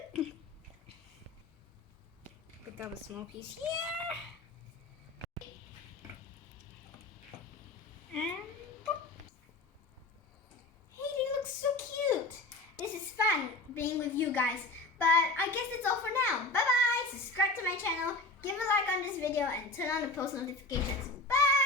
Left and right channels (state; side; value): quieter; right; 3.1 dB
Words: cute? Pick up a small piece here. And hey, they look so cute. This is fun being with you guys. But I guess that's all for now. Bye bye. Subscribe to my channel, give a like on this video, and turn on the post notifications.